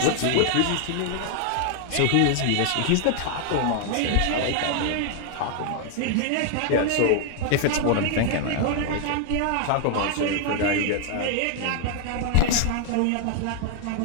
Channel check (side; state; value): both; different; correlation 0.00